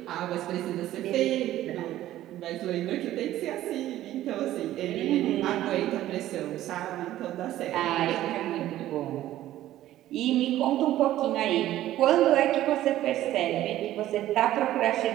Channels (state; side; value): quieter; left; 13.9 dB